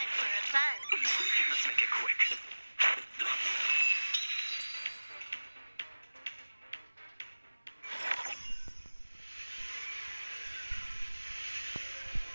for a buzz. Let's make it quick.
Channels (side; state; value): both; inverted; correlation -1.00